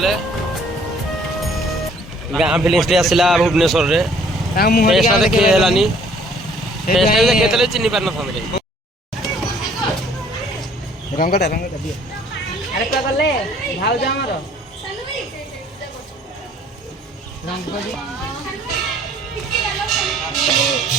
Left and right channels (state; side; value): normal; both; correlation 0.58